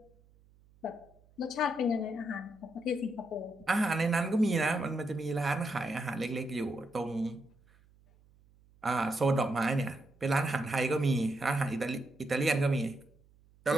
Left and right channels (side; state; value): right; noise; hum, 29 dB below the sound